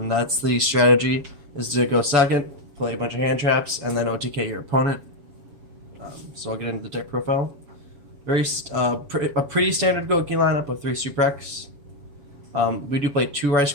the strategy, is to go second, play a bunch of hand traps, and then OTK your opponent. So I'll get into the deck profile. A pretty standard Gouki lineup of 3 Super X. We do play 2 Rice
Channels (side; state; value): left; late; 7.2 ms